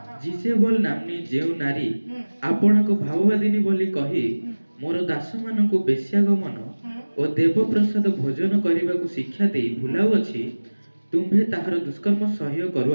ଜିଜେବଲ ନାମ୍ନୀ ଯେଉଁ ନାରୀ ଆପଣଙ୍କ ଭାବବାଦିନୀ ବୋଲି କହି ମୋର ଦାସମାନଙ୍କୁ ବେଶ୍ୟାଗମନ ଓ ଦେବପ୍ରସାଦ ଭୋଜନ କରିବାକୁ ଶିକ୍ଷା ଦେଇ ଭୁଲାଉଅଛି, ତୁମ୍ଭେ ତାହାର ଦୁଷ୍କର୍ମ ସହ୍ୟ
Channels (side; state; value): both; inverted; correlation -1.00